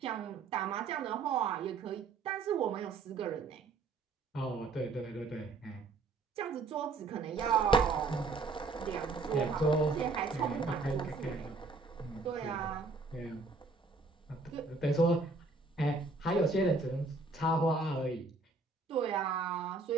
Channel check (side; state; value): left; quieter; 3.9 dB